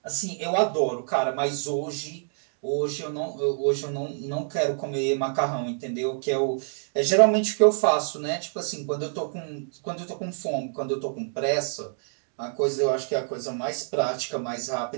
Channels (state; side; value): silent; left; digital silence